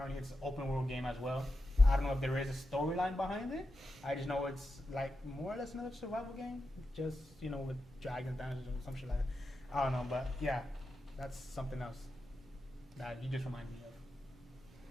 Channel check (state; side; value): normal; both; correlation 0.89